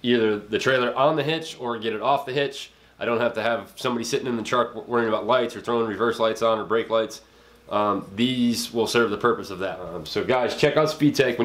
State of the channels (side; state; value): both; identical; correlation 1.00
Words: either the trailer on the hitch or get it off the hitch. I don't have to have somebody sitting in the truck worrying about lights or throwing reverse lights on or brake lights. These will serve the purpose of that. So guys, check out Speedtech.